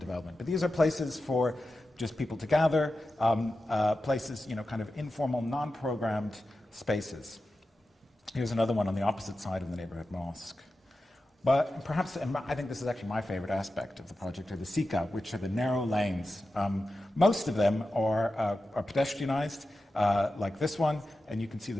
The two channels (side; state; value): both; normal; correlation 0.92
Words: But these are places for just people to gather, places, kind of informal, non-programmed spaces. Here's another one on the opposite side of the neighborhood mosque. But perhaps, and I think this is actually my favorite aspect of the project, are the Sika, which are the narrow lanes. Most of them are pedestrianized, like this one, and you can see the